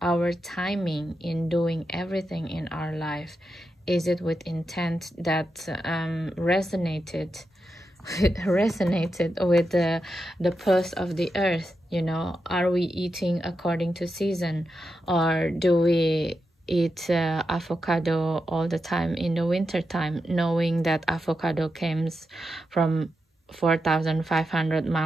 our timing in doing everything in our life. Is it with intent that resonated with the pulse of the earth? Are we eating according to season, or do we eat avocado all the time in the winter time, knowing that avocado comes from 4,500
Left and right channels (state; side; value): normal; both; correlation 0.87